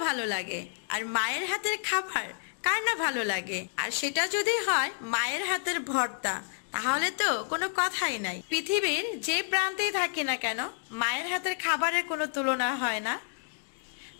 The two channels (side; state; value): right; silent; digital silence